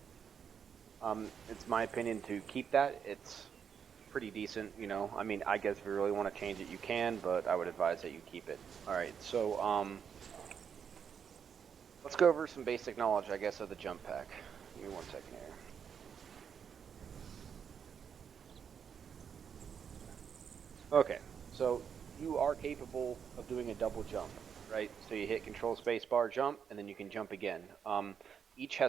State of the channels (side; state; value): left; quieter; 7.4 dB